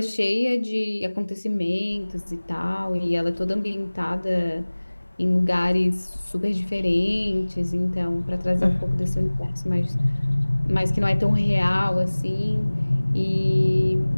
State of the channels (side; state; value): both; inverted; correlation -1.00